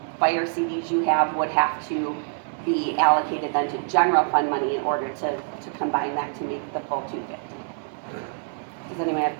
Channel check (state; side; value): silent; left; digital silence